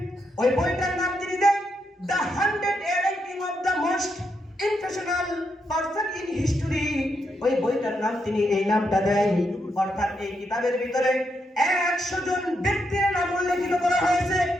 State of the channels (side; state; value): both; normal; correlation 0.81